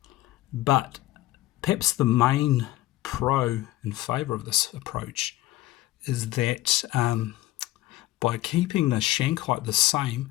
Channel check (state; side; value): quieter; right; 16.4 dB